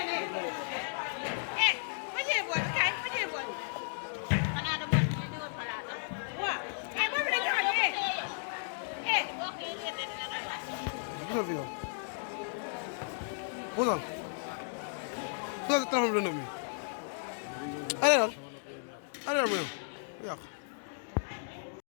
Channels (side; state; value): right; silent; digital silence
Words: Gisal fi yow. Puusal. Puusal si téléphone bi lëndëm bi. Allez allez mu yow yàq.